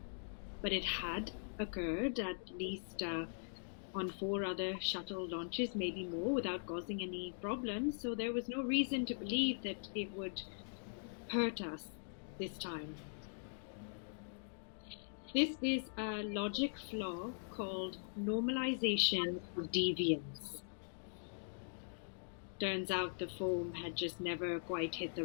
But it had occurred at least on 4 other shuttle launches, maybe more, without causing any problems, so there was no reason to believe that it would hurt us this time. This is a logic flaw called normalization of deviance. Turns out the foam had just never quite hit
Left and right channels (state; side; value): silent; right; digital silence